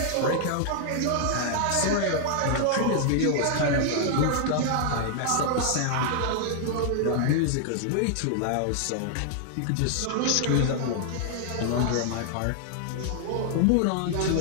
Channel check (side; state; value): both; different; correlation 0.00